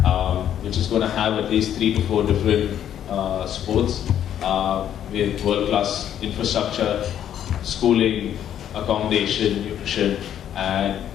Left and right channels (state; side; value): quieter; right; 10.2 dB